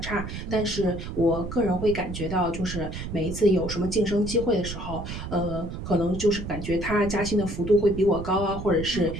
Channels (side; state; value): right; noise; rumble, 7 dB below the sound